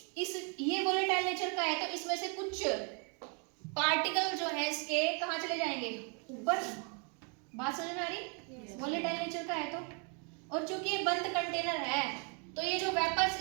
ये वोलेटाइल नेचर का है, तो इसमें से कुछ पार्टिकल जो है इसके कहाँ चले जाएंगे, ऊपर। बात समझ में आ रही, वोलेटाइल नेचर का है तो। और चूंकि ये बंद कंटेनर है, तो ये जो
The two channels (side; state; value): left; quieter; 36.9 dB